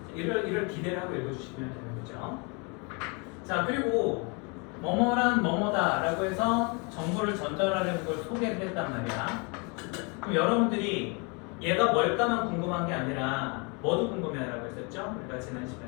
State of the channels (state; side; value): quieter; right; 32.3 dB